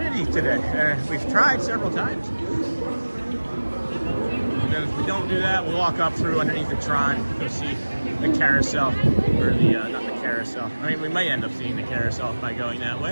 today. We've tried several times. And then if we don't do that, we'll walk up through underneath the Tron, go see the carousel, or the, not the carousel. I mean, we might end up seeing the carousel by going that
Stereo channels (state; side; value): inverted; both; correlation -1.00